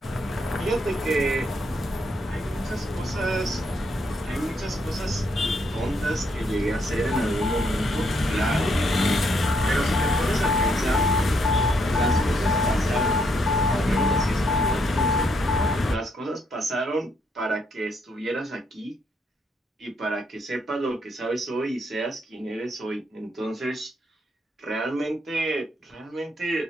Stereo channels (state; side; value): normal; both; correlation 0.74